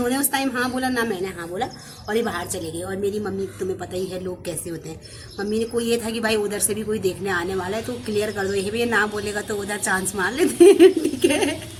उस टाइम हाँ बोला ना मैंने हाँ बोला, और ये बाहर चले गए। और मेरी मम्मी, तुम्हें पता ही है लोग कैसे होते हैं। मम्मी ने कोई ये था कि भाई उधर से भी कोई देखने आने वाला है तो क्लियर कर दो, ये भी ना बोलेगा तो उधर चांस मार लेते हैं, ठीक है।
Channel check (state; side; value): identical; both; correlation 1.00